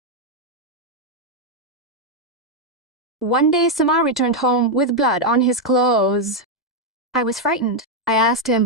One day, Samar returned home with blood on his clothes. I was frightened. I asked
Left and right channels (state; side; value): normal; both; correlation 0.01